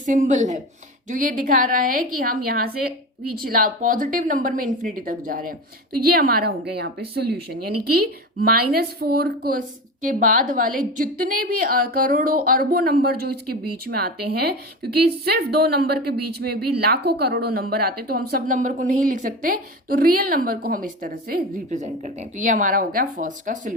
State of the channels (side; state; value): both; normal; correlation 0.26